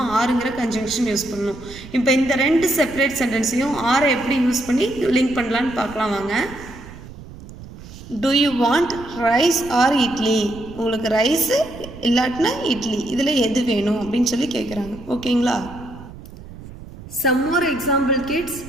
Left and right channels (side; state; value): right; noise; rumble, 16 dB below the sound